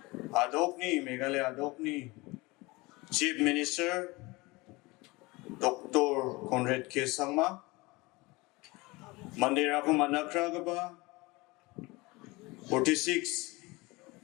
Adokni Meghalaya Adokni Chief Minister Dr. Conrad Sangma Mandira ko manakragaba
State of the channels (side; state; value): right; quieter; 23.2 dB